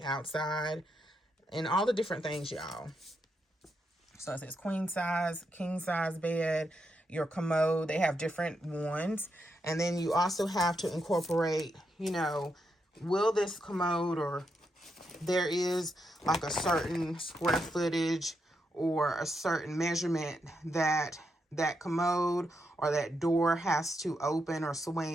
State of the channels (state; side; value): normal; both; correlation 0.82